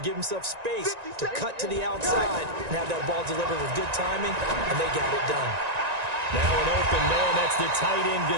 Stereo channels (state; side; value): late; left; 1.9 ms